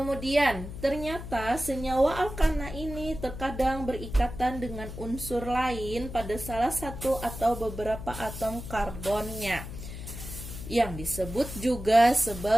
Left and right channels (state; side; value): noise; left; hum, 10 dB below the sound